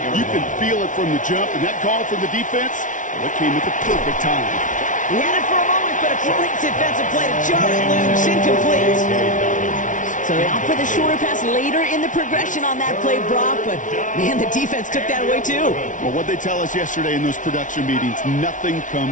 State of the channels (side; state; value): right; late; 0.37 ms